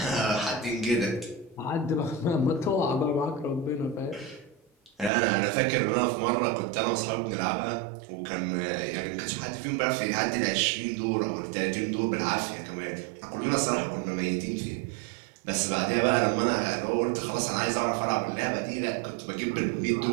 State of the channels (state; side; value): drops out; left; at 5.1 s